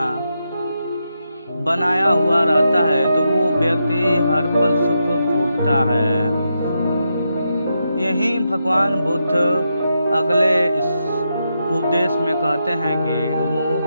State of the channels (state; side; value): inverted; both; correlation -0.85